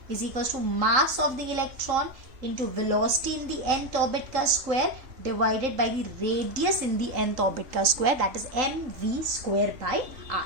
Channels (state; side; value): late; left; 3.8 ms